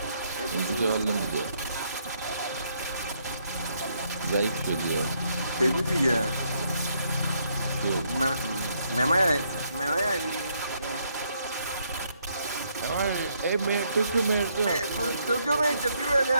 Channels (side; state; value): both; inverted; correlation -0.73